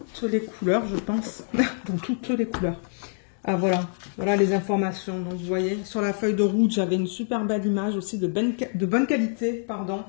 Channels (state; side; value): silent; right; 61 dB below the other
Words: les couleurs, je pense. Dans toutes les couleurs. Ah, voilà. Voilà les informations. Donc, vous voyez, sur la feuille de route, j'avais une super belle image aussi de bonne qualité, pardon.